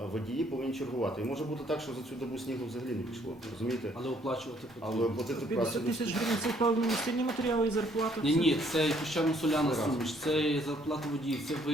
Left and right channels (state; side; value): normal; both; correlation 0.65